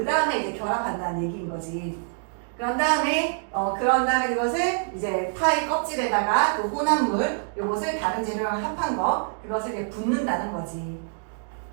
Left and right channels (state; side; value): silent; left; digital silence